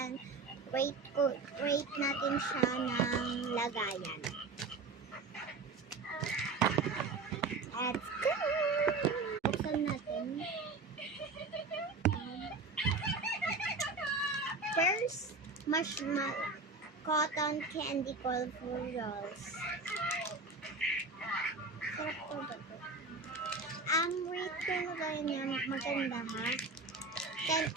ng lagayan. Let's go! Buksan natin. First, marshmallow cotton candy colorful rolls. Sarap po ba ito? Rate ko na kayo niya. Maganda ha.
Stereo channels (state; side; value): quieter; left; 3.8 dB